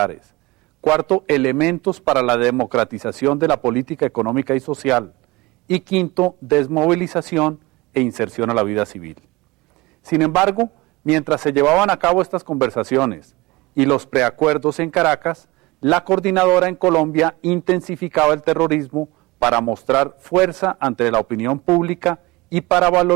Cuarto, elementos para la democratización de la política económica y social. Y quinto, desmovilización e inserción a la vida civil. Sin embargo, mientras se llevaban a cabo estas conversaciones y los preacuerdos en Caracas, la coordinadora en Colombia intensificaba el terrorismo para mostrar fuerza ante la opinión pública y para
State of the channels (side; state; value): left; quieter; 21.7 dB